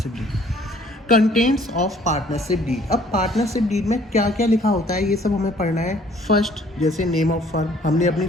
deed. Contents of partnership deed. अब पार्टनरशिप डीड में क्या क्या लिखा होता है ये सब हमें पढ़ना है। फर्स्ट, जैसे नेम ऑफ फर्म, हमने अपनी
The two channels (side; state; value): both; normal; correlation 0.58